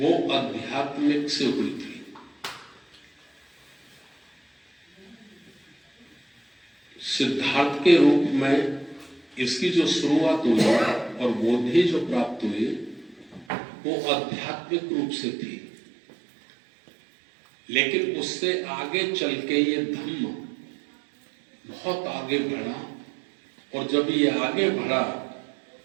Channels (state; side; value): drops out; left; at 13.5 s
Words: आध्यात्मिक से हुई थी। सिद्धार्थ के रूप में इसकी जो शुरुआत हुई और बोधि जो प्राप्त हुई वो आध्यात्मिक रूप से थी, लेकिन उससे आगे चल के ये धम्म बहुत आगे बढ़ा, और जब ये आगे बढ़ा